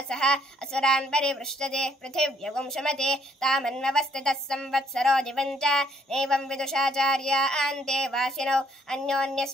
सह असुरान् परिवृष्टते पृथिव्यगुंशमते तामन्ववस्थितः संवत्सरो दिवञ्च नैवं विदुषाचार्या अन्ते वासिनौ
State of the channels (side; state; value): both; normal; correlation 0.67